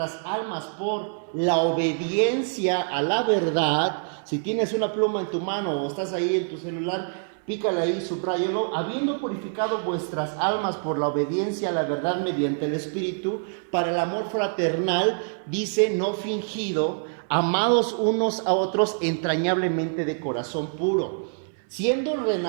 almas por la obediencia a la verdad. Si tienes una pluma en tu mano o estás ahí en tu celular, pícale ahí, subráyalo. Habiendo purificado vuestras almas por la obediencia a la verdad mediante el Espíritu, para el amor fraternal, dice, no fingido, amados unos a otros entrañablemente de corazón puro, siendo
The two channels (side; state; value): left; silent; 58 dB below the other